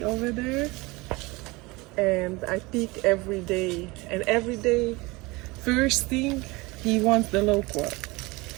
over there, and I pick every day. And every day, first thing, he wants the loquat.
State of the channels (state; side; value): quieter; left; 23.7 dB